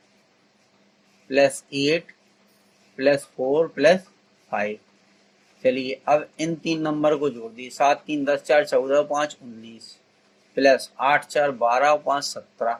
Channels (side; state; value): both; identical; correlation 1.00